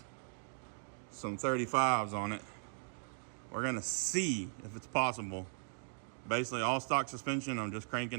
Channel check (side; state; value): left; silent; digital silence